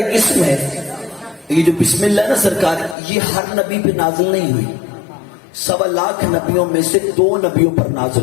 اسم ہے. یہ جو بسم اللہ نا سرکار, یہ ہر نبی پہ نازل نہیں ہوئی, 1.25 لاکھ نبیوں میں سے 2 نبیوں پر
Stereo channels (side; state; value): right; drops out; at 3.0 s